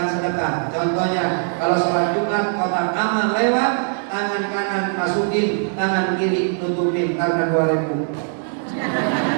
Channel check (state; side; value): silent; left; 58 dB below the other